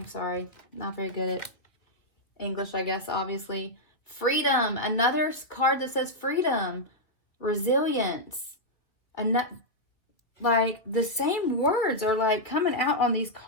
sorry, not very good at English, I guess, obviously. Freedom, another card that says freedom, resilience. Like the same words are like coming out on these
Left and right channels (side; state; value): right; late; 2.3 ms